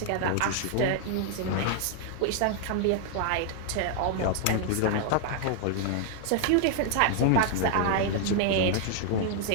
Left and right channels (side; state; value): both; different; correlation 0.00